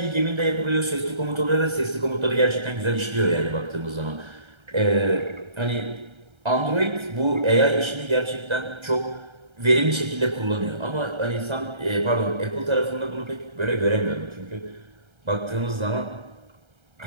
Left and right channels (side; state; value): left; late; 1.3 ms